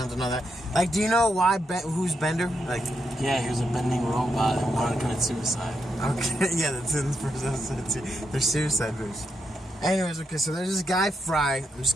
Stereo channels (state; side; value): normal; both; correlation 0.82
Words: and all that. Like, do you know who's Bender? Like, yeah, he was a bending robot and wanted to commit suicide. Okay, yeah, that's in the first episode too. They're suicide moves. Anyways, okay, so there's this guy, Fry. I'm